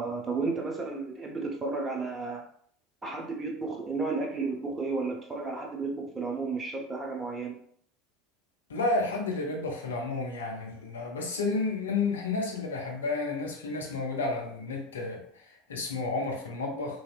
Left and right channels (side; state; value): both; normal; correlation 0.21